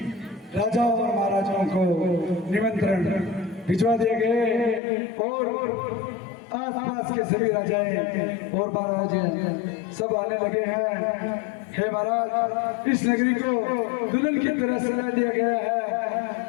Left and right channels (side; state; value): right; drops out; at 4.8 s